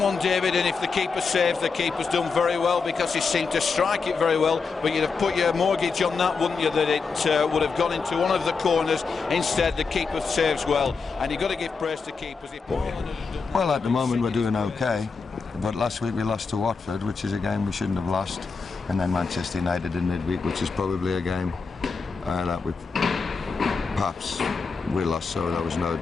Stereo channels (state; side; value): quieter; right; 4.9 dB